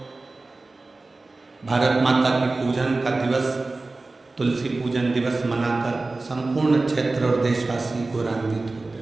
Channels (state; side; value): quieter; left; 3.4 dB